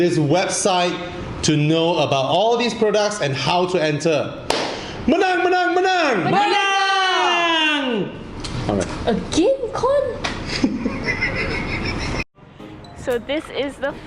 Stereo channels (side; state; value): both; identical; correlation 1.00